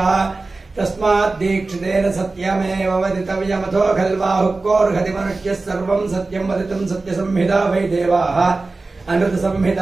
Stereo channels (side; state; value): left; quieter; 3.5 dB